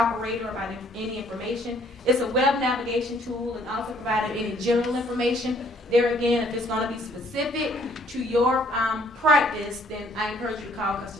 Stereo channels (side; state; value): both; normal; correlation 0.62